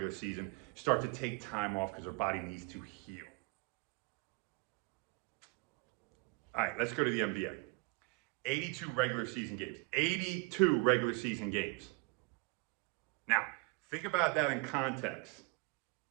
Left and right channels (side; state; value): left; quieter; 30.5 dB